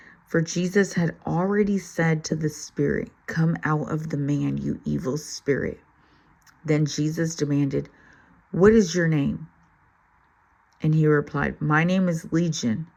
For Jesus had already said to the spirit, "Come out of the man, you evil spirit." Then Jesus demanded, "What is your name?" And he replied, "My name is Legion,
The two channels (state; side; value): identical; both; correlation 1.00